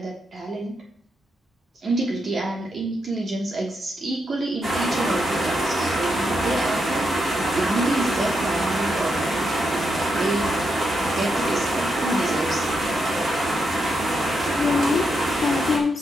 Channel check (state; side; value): normal; both; correlation 0.82